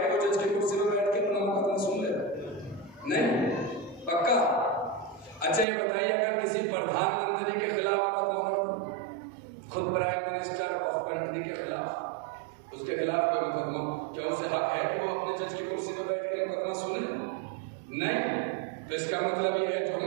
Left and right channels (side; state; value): left; drops out; at 5.7 s